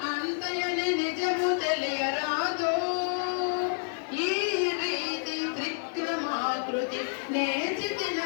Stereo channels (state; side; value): silent; right; digital silence